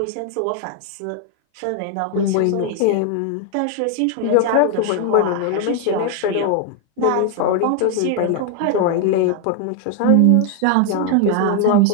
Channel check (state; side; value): different; both; correlation 0.01